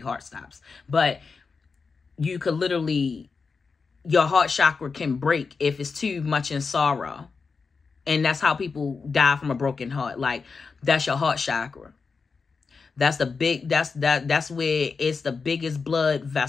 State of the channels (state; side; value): quieter; right; 4.9 dB